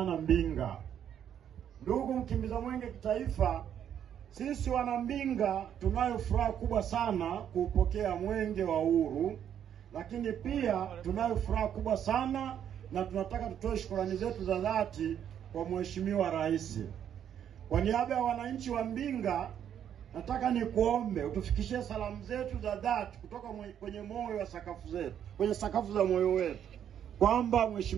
Mbinga. Ndugu mkimbiza mwenge kitaifa, sisi wana Mbinga tunayo furaha kubwa sana kupokea mwenge wa uhuru, lakini pia tunayo furaha kubwa sana na tunataka tutoe shukrani zetu za dhati kwa Mheshimiwa Rais. Kwa niaba ya wananchi wa Mbinga, nataka nikuombe utufikishie salamu zetu za dhati kutoka kwenye moyo wa sakafu zetu, kwenye sakafu za moyo wetu, kwamba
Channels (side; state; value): left; quieter; 9.4 dB